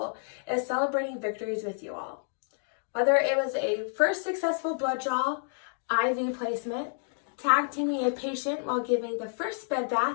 is celebrating victories with you all. Whether it was a first successful blood draw, IV placement, tag teaming a patient while giving the first bed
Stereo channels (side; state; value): right; silent; digital silence